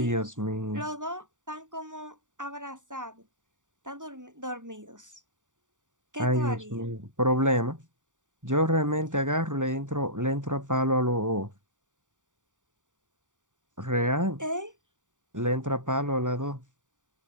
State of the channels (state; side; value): late; left; 0.86 ms